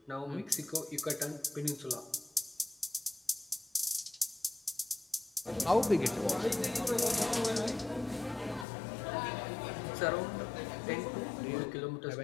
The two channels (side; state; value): right; drops out; at 8.7 s